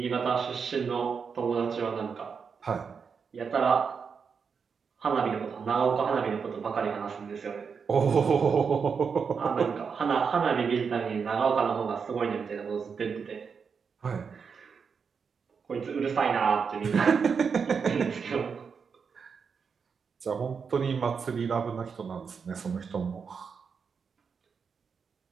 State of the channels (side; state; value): left; quieter; 5.9 dB